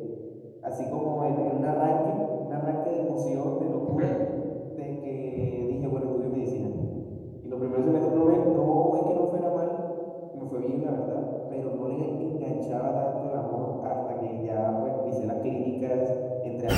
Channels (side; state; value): both; identical; correlation 1.00